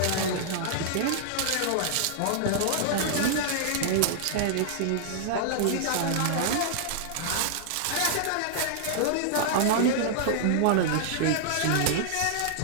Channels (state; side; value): different; both; correlation -0.01